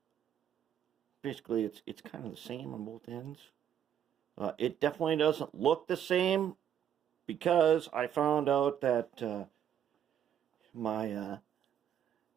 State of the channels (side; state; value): left; quieter; 9.5 dB